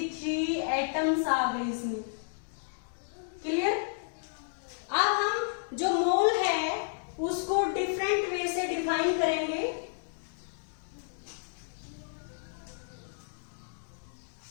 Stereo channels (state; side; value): silent; right; digital silence